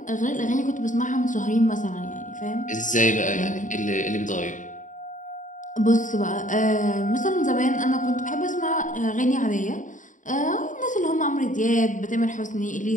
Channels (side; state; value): right; late; 0.37 ms